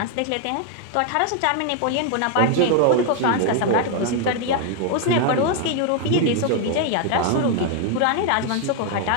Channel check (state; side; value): different; both; correlation 0.00